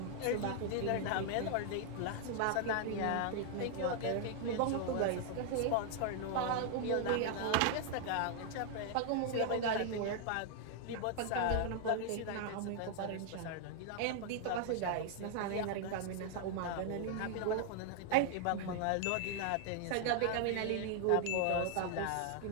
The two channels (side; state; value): both; different; correlation 0.00